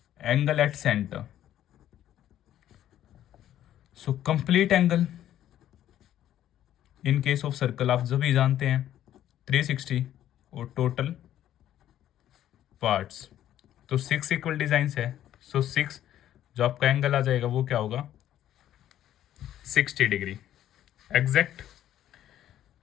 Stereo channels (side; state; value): right; quieter; 11.9 dB